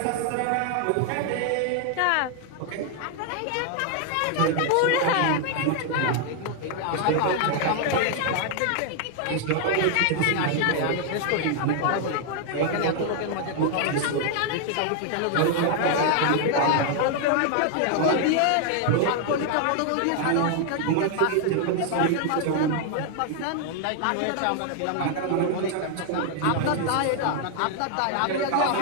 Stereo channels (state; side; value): different; both; correlation 0.00